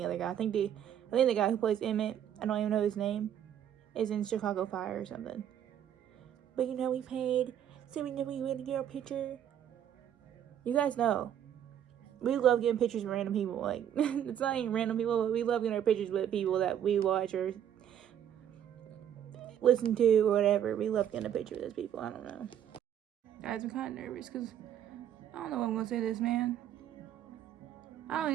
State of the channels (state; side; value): quieter; left; 9.9 dB